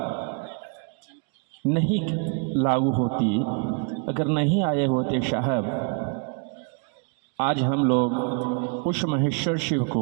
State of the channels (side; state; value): left; quieter; 37.2 dB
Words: नहीं लागू होती, अगर नहीं आए होते साहब, आज हम लोग उस महेश्वर शिव